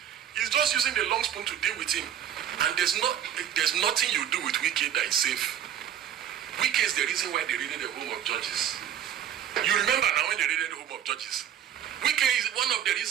He's just using the long spoon to deal with him. And there's nothing you do with Wike that is safe. Wike is the reason why they raided the home of judges. You remember now when they raided the home of judges. Wike is one of the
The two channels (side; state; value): left; quieter; 9.8 dB